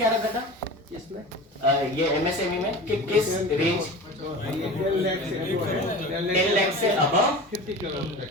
रखा था इसमें, ये एमएसएमई में, कि किस रेंज 10 लाख से अबव 50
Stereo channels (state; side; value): normal; both; correlation 0.35